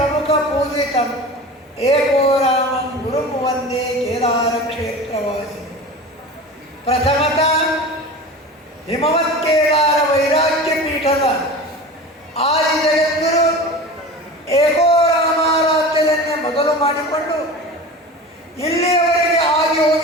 ಪೂಜಿತಂ ಏಕೋ ರಾಮಂ ಗುರುಂ ವಂದೇ ಕೇದಾರ ಕ್ಷೇತ್ರವಾಸಿ. ಪ್ರಥಮತಃ ಹಿಮವತ್ ಕೇದಾರ ವೈರಾಗ್ಯ ಪೀಠದ ಆದಿ ಜಗದ್ಗುರು ಏಕೋ ರಾಮಾರಾಧ್ಯದನ್ನೇ ಮೊದಲು ಮಾಡಿಕೊಂಡು ಇಲ್ಲಿಯವರೆಗೆ ಆಗಿ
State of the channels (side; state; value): both; normal; correlation 0.33